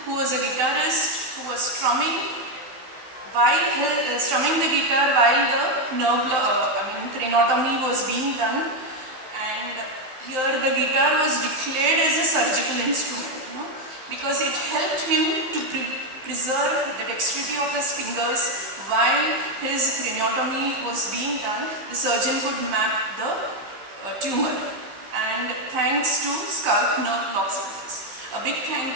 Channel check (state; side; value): late; left; 15 ms